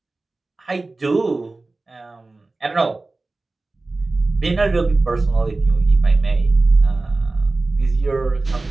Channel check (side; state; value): left; quieter; 3.3 dB